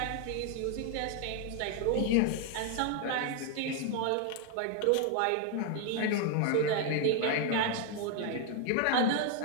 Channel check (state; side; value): different; both; correlation 0.01